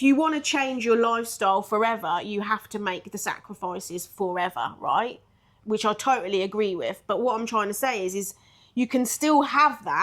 you want to change your lifestyle forever, you have to make the sacrifices forever, right? Which I totally agree with. But what I'm trying to say is you can still have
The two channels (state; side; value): identical; both; correlation 1.00